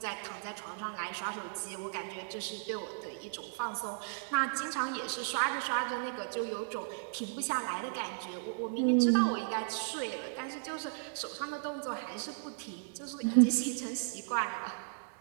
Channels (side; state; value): left; silent; digital silence